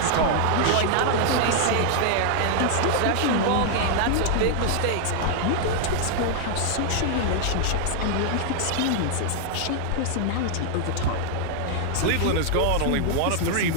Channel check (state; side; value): different; both; correlation 0.00